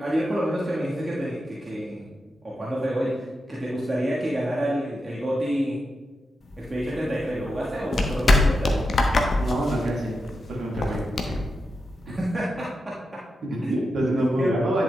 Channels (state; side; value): normal; both; correlation 0.88